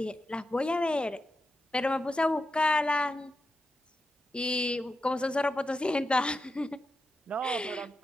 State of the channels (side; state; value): both; normal; correlation 0.88